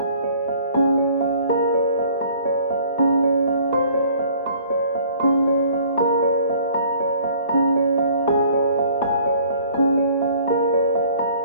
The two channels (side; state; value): both; inverted; correlation -0.55